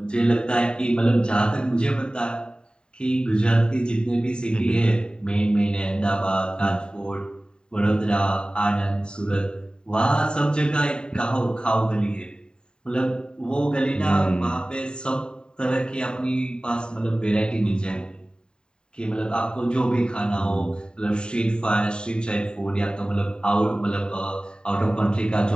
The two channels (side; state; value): right; late; 0.048 ms